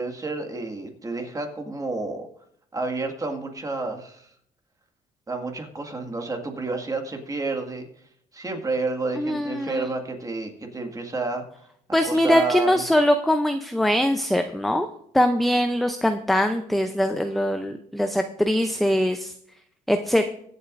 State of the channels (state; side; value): normal; both; correlation 0.86